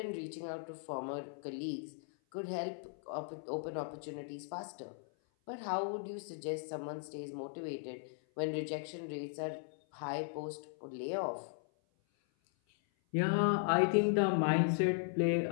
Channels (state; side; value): silent; right; 53 dB below the other